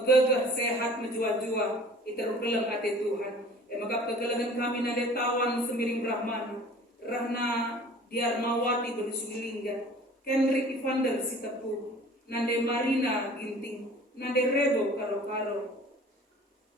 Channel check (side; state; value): both; normal; correlation 0.47